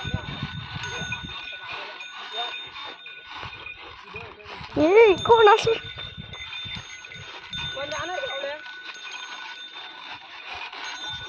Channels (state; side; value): identical; both; correlation 1.00